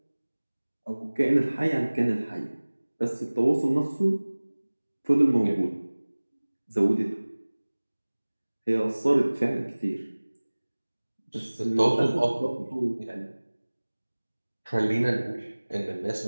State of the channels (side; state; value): both; inverted; correlation -1.00